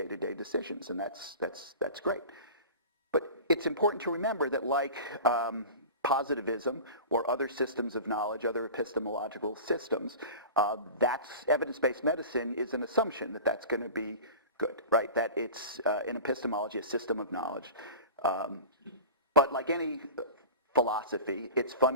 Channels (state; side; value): inverted; both; correlation -0.35